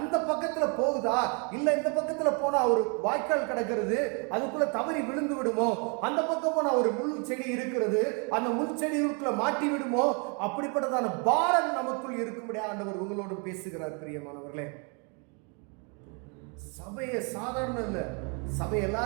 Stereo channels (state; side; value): quieter; left; 35.6 dB